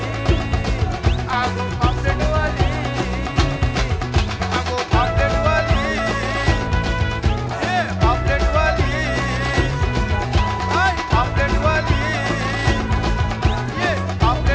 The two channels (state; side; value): identical; both; correlation 1.00